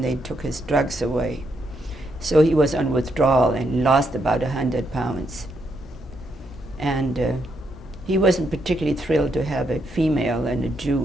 they took his drugs away. So he was on withdrawal and lost about 100 pounds. And he wasn't particularly thrilled to have a female and a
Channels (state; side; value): normal; both; correlation 0.78